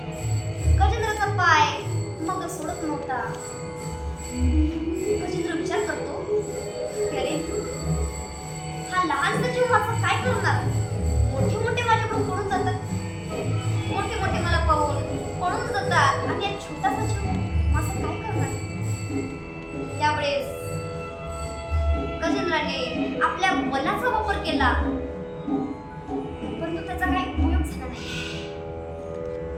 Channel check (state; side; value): identical; both; correlation 1.00